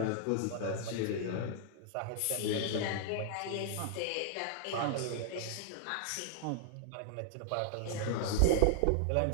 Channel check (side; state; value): both; different; correlation -0.01